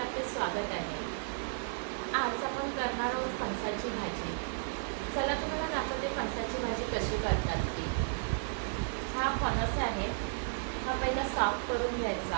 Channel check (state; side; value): silent; left; 55 dB below the other